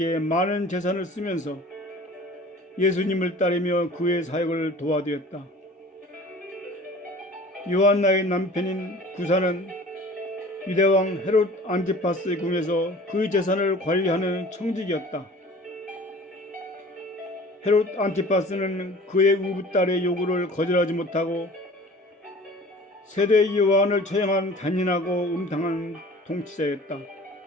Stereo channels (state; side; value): normal; both; correlation 0.45